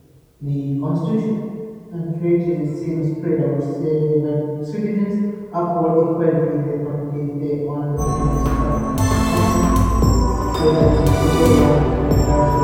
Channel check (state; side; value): identical; both; correlation 1.00